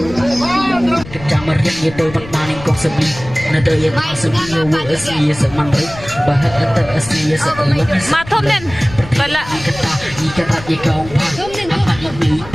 Kecamar yang itu maning kong sebi nada yang sebi wo asli seman ri bahak antar asli seelang Matom nen. Bala. kata ikata ikong apa ini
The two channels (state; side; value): noise; left; rumble, 15 dB below the sound